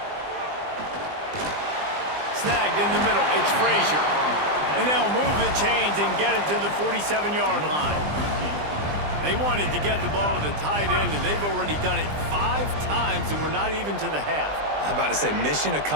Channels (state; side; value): late; left; 20 ms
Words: Snagged in the middle. It's Frazier. And they'll move the chains and get it to the 47-yard line. They wanted to get the ball to the tight end, and they've already done it 5 times, and we're not even to the half. I'm about to say mission